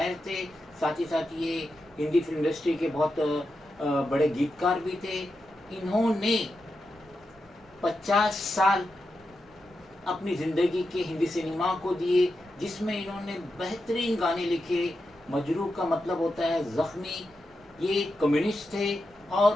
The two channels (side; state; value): both; normal; correlation 0.88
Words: थे, साथ ही साथ ये हिंदी फिल्म इंडस्ट्री के बहुत बड़े गीतकार भी थे। इन्होंने 50 साल अपनी ज़िंदगी के हिंदी सिनेमा को दिए, जिसमें इन्होंने बेहतरीन गाने लिखे। मजरू का मतलब होता है ज़ख्मी। ये कम्युनिस्ट थे